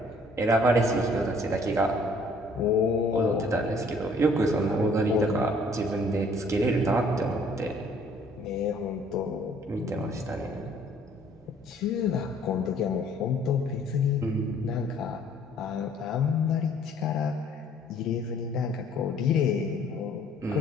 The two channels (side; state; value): both; normal; correlation 0.59